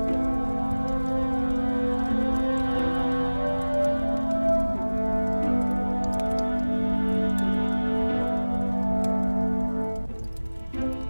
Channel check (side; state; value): both; inverted; correlation -1.00